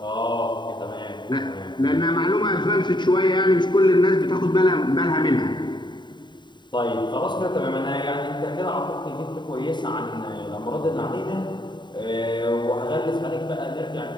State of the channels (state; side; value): late; right; 0.22 ms